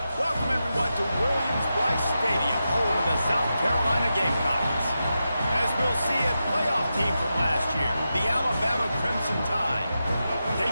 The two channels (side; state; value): both; inverted; correlation -0.89